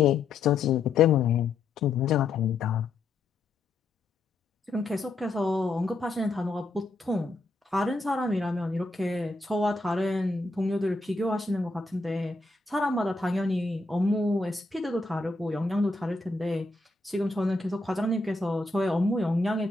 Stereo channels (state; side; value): quieter; right; 3.4 dB